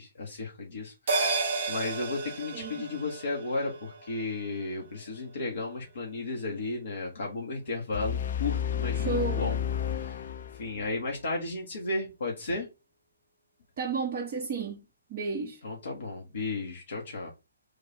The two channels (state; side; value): inverted; both; correlation -0.41